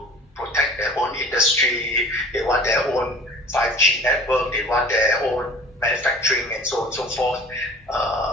protect their own industry, they want their own 5G network, they want their own manufacturing, and so on and so forth.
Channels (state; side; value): normal; both; correlation 0.45